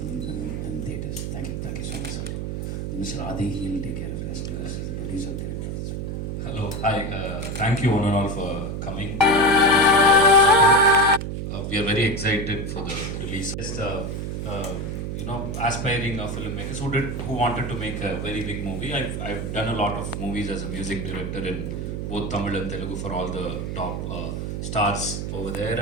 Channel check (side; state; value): right; noise; hum, 4 dB below the sound